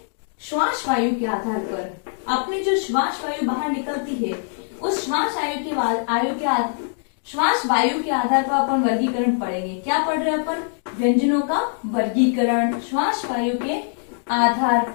श्वास वायु के आधार पर। अपनी जो श्वास वायु बाहर निकलती है उस श्वास वायु के आधार पर अपन वर्गीकरण पढ़ेंगे। क्या पढ़ रहे हैं अपन? व्यंजनों का वर्गीकरण श्वास वायु के आधार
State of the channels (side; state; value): right; silent; digital silence